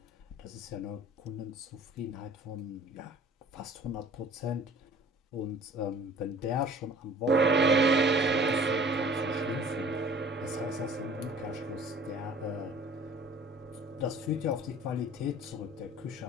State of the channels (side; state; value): both; normal; correlation 0.48